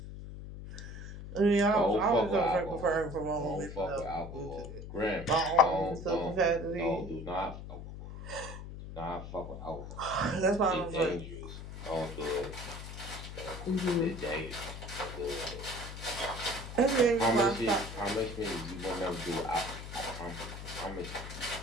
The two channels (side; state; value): left; noise; hum, 10 dB below the sound